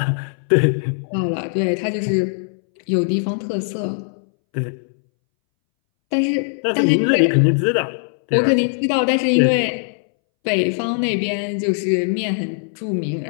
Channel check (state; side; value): silent; right; 64 dB below the other